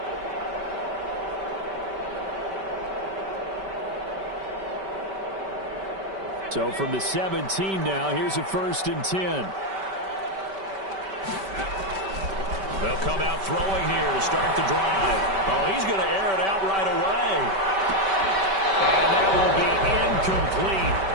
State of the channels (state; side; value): late; left; 5.2 ms